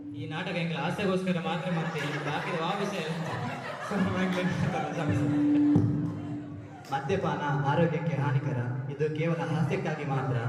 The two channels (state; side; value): identical; both; correlation 1.00